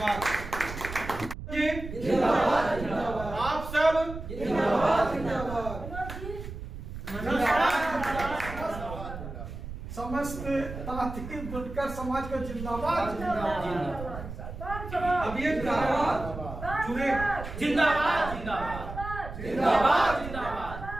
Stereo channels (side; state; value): right; noise; rumble, 10 dB below the sound